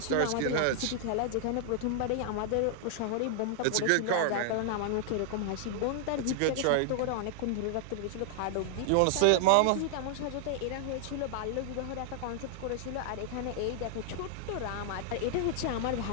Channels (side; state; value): both; different; correlation -0.01